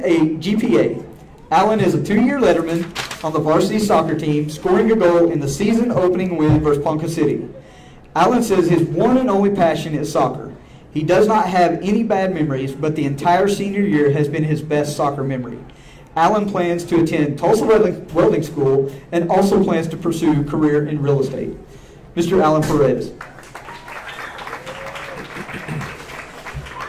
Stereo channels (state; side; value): identical; both; correlation 1.00